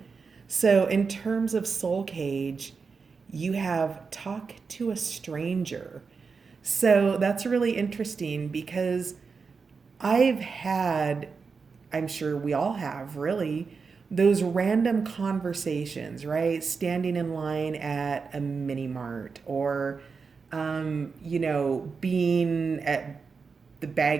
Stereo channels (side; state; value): left; quieter; 5.1 dB